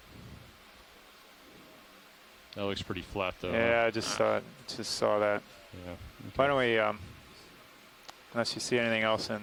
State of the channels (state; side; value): identical; both; correlation 1.00